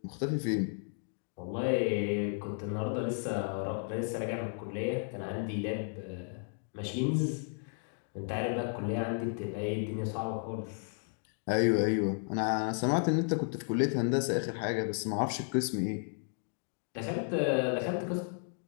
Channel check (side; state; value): right; silent; 55 dB below the other